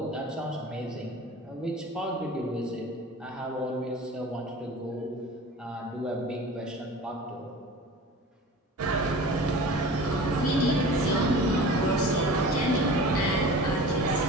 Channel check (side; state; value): both; normal; correlation 0.38